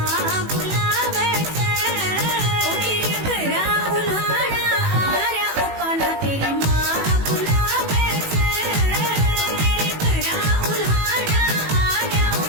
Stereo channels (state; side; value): late; left; 18 ms